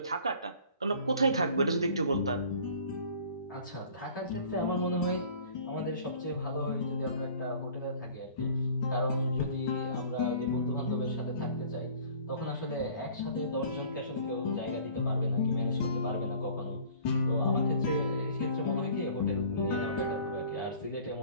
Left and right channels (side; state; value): both; inverted; correlation -0.49